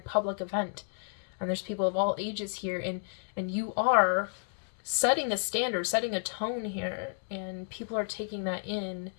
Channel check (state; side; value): silent; right; digital silence